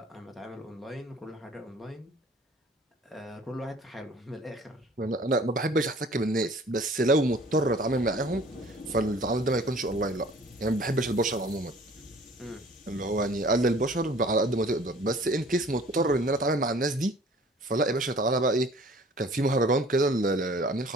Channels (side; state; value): both; normal; correlation 0.51